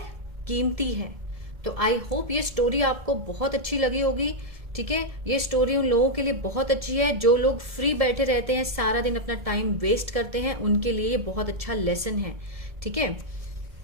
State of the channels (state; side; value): late; left; 1.7 ms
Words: कीमती है। तो आई होप ये स्टोरी आपको बहुत अच्छी लगी होगी। ठीक है, ये स्टोरी उन लोगों के लिए बहुत अच्छी है जो लोग फ्री बैठे रहते हैं, सारा दिन अपना टाइम वेस्ट करते हैं, उनके लिए ये बहुत अच्छा लेसन है। ठीक है,